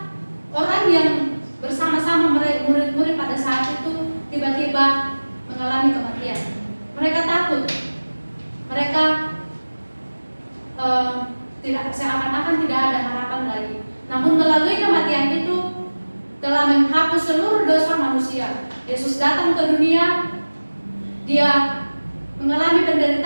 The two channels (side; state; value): both; inverted; correlation -1.00